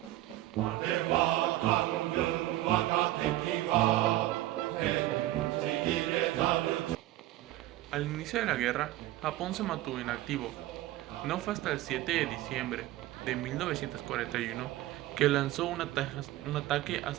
Al inicio de la guerra, Japón se mantuvo inactivo. No fue hasta el 7 de diciembre de 1941 que lanzó un ataque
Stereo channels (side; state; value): left; quieter; 15.6 dB